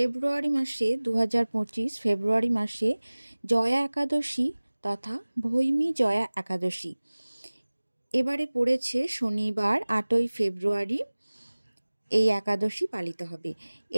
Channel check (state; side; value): inverted; both; correlation -1.00